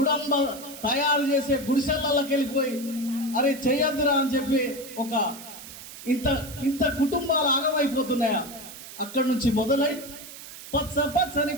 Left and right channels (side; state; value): right; noise; hiss, 14 dB below the sound